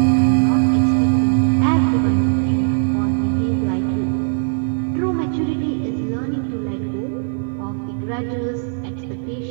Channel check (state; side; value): silent; left; 56 dB below the other